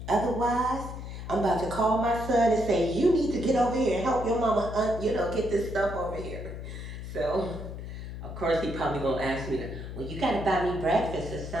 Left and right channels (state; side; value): noise; left; hum, 9 dB below the sound